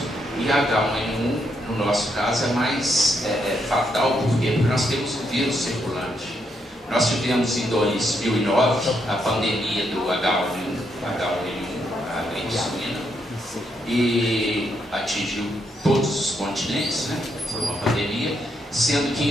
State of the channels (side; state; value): both; normal; correlation 0.78